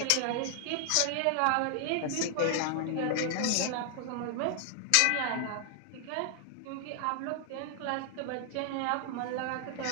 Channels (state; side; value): different; both; correlation 0.00